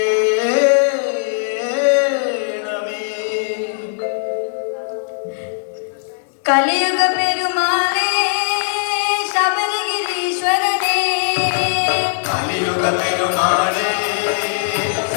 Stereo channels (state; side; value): silent; right; digital silence